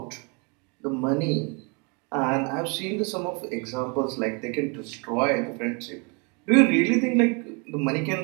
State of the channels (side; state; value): left; quieter; 32.5 dB